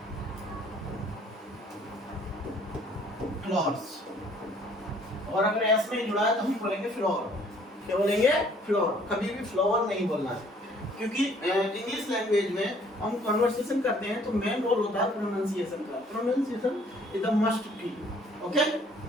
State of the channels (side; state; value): both; normal; correlation 0.59